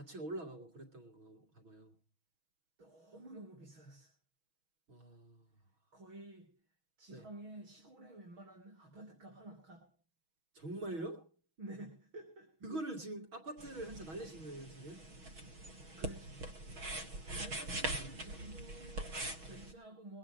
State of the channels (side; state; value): left; late; 6.2 ms